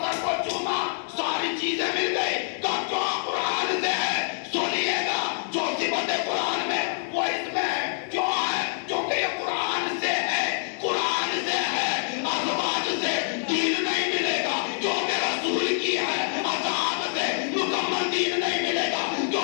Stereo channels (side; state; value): right; silent; digital silence